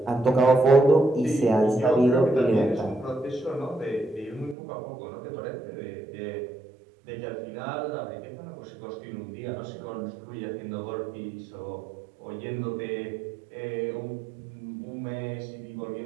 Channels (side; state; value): left; drops out; at 4.5 s